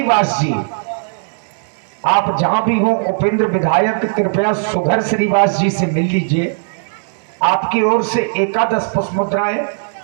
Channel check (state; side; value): silent; left; digital silence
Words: जी। आप जहां भी हो उपेंद्र विधायक कृपया सुघर श्रीवास जी से मिल लीजिए। आपकी ओर से एकादश पुष्प मुद्राएं